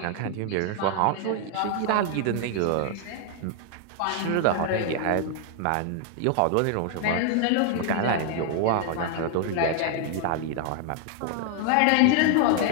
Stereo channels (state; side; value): different; both; correlation 0.00